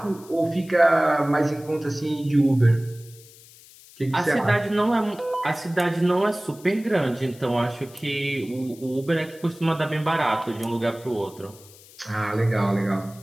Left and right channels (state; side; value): noise; left; hiss, 23 dB below the sound